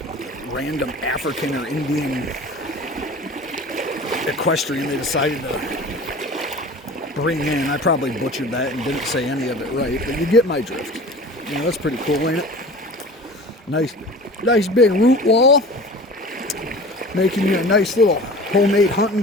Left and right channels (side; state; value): both; normal; correlation 0.40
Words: random African or Indian equestrian they decided to bring in. I probably butchered that and didn't say any of it right, but you get my drift. You know, that's pretty cool, ain't it? Nice big root wall, making you a nice little homemade hunting